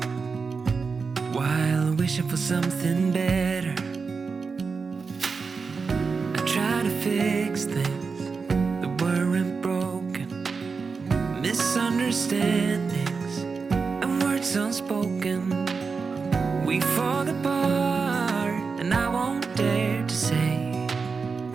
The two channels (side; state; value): left; quieter; 4.9 dB